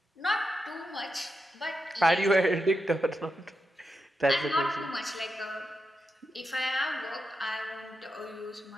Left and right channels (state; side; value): normal; both; correlation 0.87